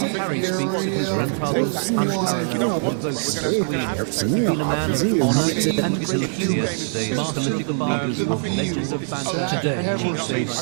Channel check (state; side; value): silent; left; 59 dB below the other